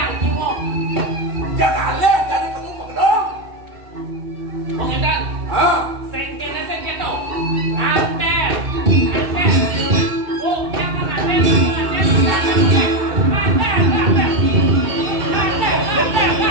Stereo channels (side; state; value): left; late; 2.7 ms